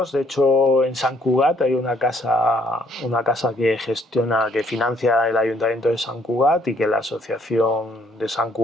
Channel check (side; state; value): both; normal; correlation 0.65